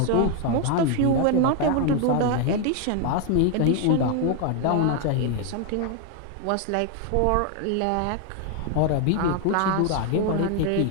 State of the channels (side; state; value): both; different; correlation 0.00